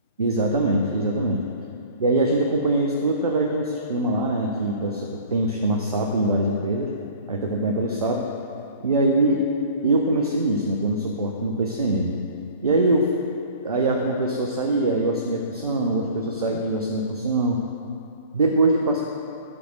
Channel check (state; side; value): inverted; both; correlation -0.46